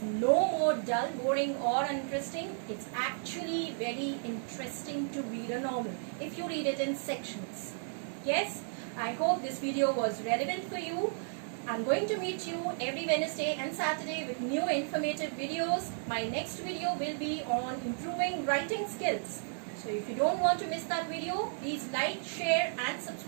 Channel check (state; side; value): silent; left; digital silence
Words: no more dull, boring or uninteresting. It's actually very interesting to read a novel if you read it in sections. Yes, I hope this video was relevant for you. I'm going to meet you every Wednesday and Saturday with new informative videos. My next video will be on improving writing skills. So if you don't want to miss that video, please like, share and